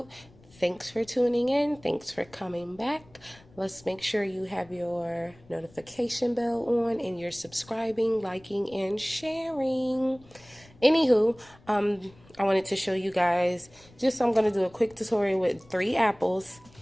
Thanks for tuning in. Thanks for coming back. Let's make sure you have your notification bell on and you're subscribing, liking, and sharing. Anywho, I wanted to show you guys I'm going to do a quick tutorial with 3 apples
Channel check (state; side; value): noise; left; rumble, 26 dB below the sound